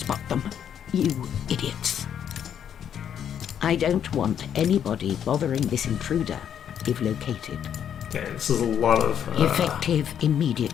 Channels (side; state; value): right; quieter; 9.0 dB